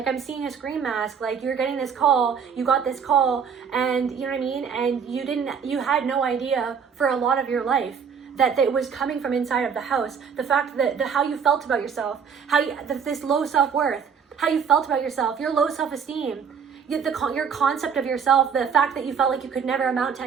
I'm seeing a Scream mask, like you're getting this call, you got this call, and you know what I mean? And you had no idea for a lot of your life that it was coming from inside of the house. The fact that how you felt about yourself, this low self-worth, how you felt about yourself, your low self-esteem, your concept of yourself, the fact that you felt like you could never amount to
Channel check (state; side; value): quieter; left; 6.7 dB